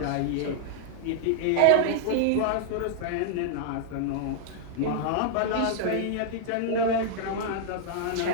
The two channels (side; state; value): both; different; correlation 0.00